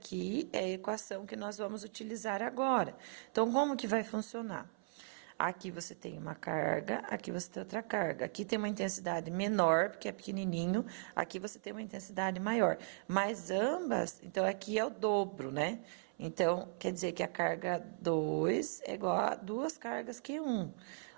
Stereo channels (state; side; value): silent; left; 53 dB below the other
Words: é a equação que nós vamos utilizar agora. Então, como que vai funcionar? Aqui você tem uma carga, aqui você tem outra carga. Aqui tem uma intensidade menor, porque é pequenininho. Aqui você tem uma intensidade maior. Mas ambas, então aqui é o dobro, né? Então, quer dizer que a carga 2 é igual a duas cargas Q1.